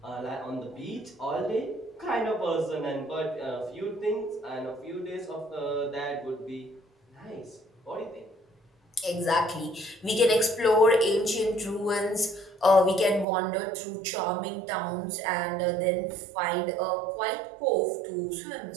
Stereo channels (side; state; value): left; drops out; at 13.2 s